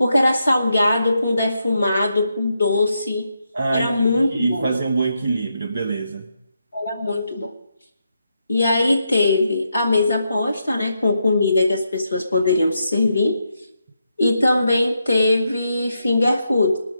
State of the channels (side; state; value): both; inverted; correlation -0.82